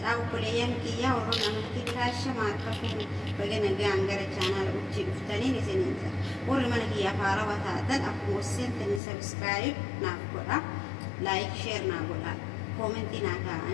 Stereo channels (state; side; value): drops out; right; at 9.0 s